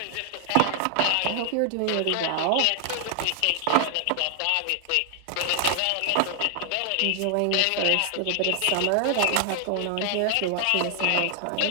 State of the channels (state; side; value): different; both; correlation 0.00